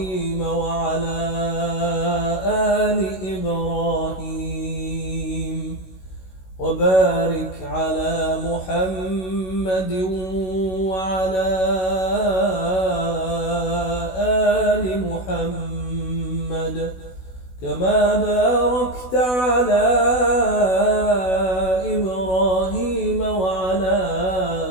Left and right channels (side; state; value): right; late; 16 ms